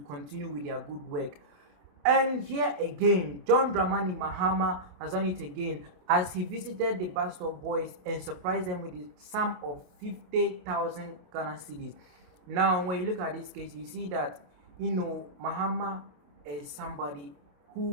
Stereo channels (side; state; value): left; late; 28 ms